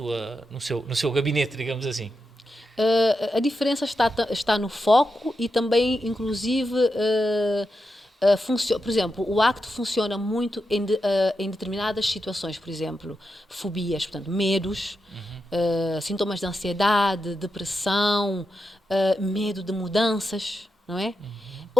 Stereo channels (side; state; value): both; normal; correlation 0.87